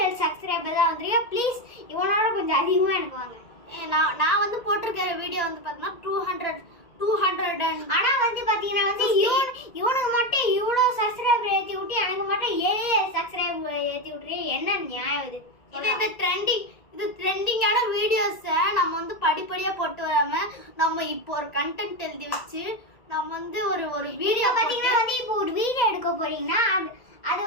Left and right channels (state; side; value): late; right; 1.8 ms